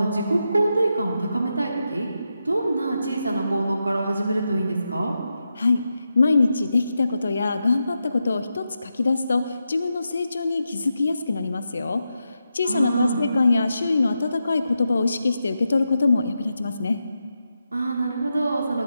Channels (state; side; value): inverted; both; correlation -0.87